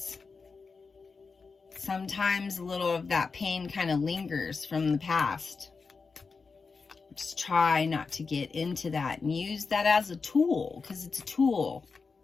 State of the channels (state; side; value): quieter; right; 4.7 dB